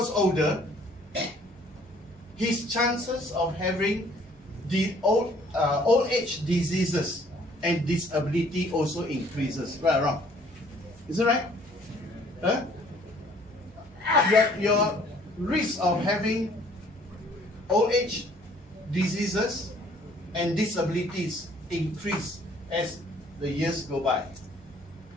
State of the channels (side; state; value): both; normal; correlation 0.58